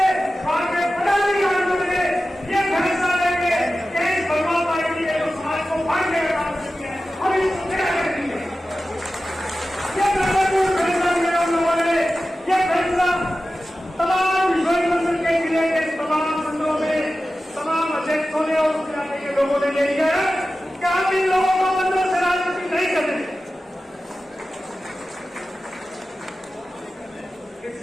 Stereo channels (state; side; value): normal; both; correlation 0.94